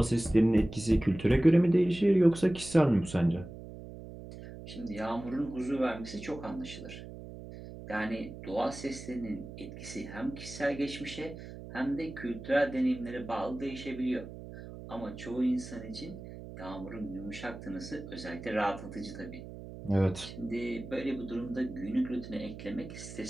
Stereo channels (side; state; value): right; noise; hum, 13 dB below the sound